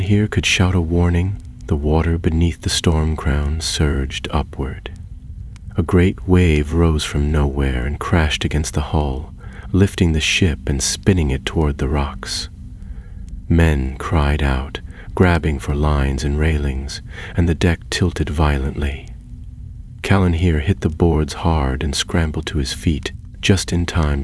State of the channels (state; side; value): identical; both; correlation 1.00